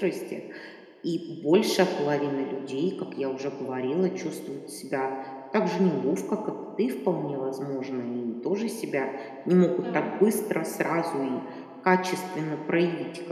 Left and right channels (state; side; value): identical; both; correlation 1.00